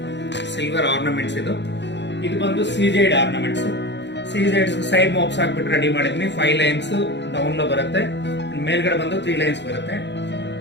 silver ornaments. ಇದು ಬಂದು ಸಿಜೆಡ್ ಆರ್ನಮೆಂಟ್ಸ್. ಸಿಜೆಡ್ಸ್ ಸೈಡ್ ಮೋಬ್ಸ್ ಹಾಕ್ಬಿಟ್ಟು ರೆಡಿ ಮಾಡಿದ್ವಿ. 5 ಲೈನ್ಸ್ ಡೌನ್ లో ಬರುತ್ತೆ, ಮೇಲ್ಗಡೆ ಬಂದು 3 ಲೈನ್ಸ್ ಬರುತ್ತೆ.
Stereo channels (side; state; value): right; late; 0.52 ms